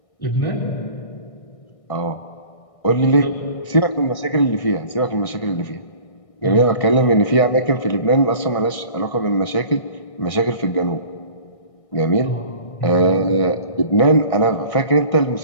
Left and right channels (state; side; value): late; right; 1.6 ms